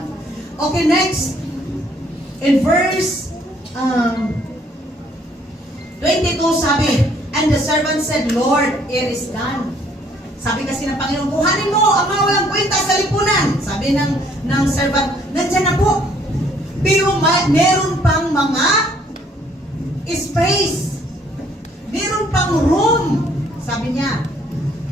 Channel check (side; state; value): both; normal; correlation 0.63